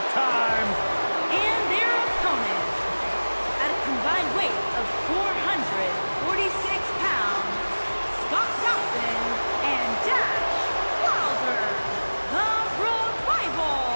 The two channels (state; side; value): inverted; both; correlation -1.00